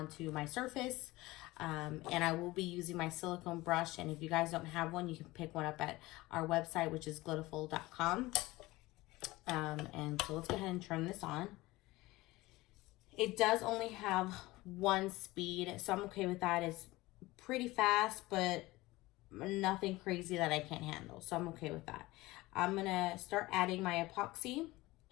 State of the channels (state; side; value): quieter; right; 19.7 dB